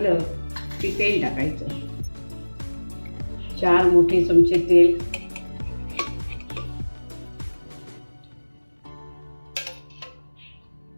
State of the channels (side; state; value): both; inverted; correlation -1.00